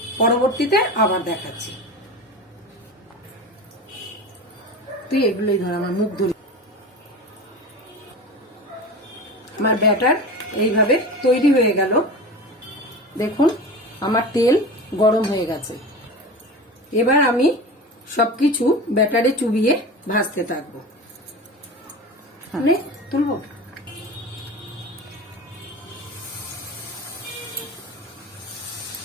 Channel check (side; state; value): both; normal; correlation 0.30